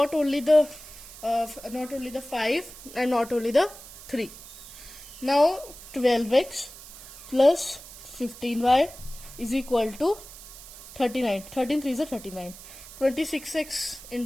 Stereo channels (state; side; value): noise; right; hiss, 16 dB below the sound